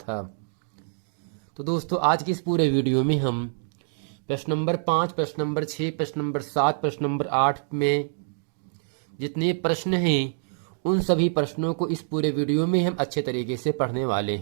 तो दोस्तों, आज की इस पूरे वीडियो में हम प्रश्न नंबर 5, प्रश्न नंबर 6, प्रश्न नंबर 7, प्रश्न नंबर 8 में जितने प्रश्न हैं उन सभी प्रश्नों को इस पूरे वीडियो में हम अच्छे तरीके से पढ़ने वाले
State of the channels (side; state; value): left; silent; digital silence